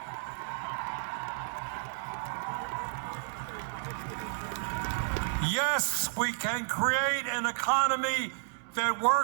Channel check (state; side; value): silent; left; digital silence